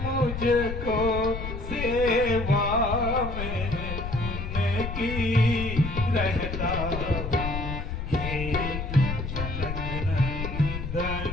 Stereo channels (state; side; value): noise; left; rumble, 5 dB below the sound